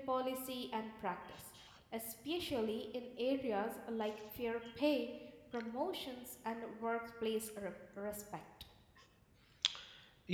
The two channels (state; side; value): identical; both; correlation 1.00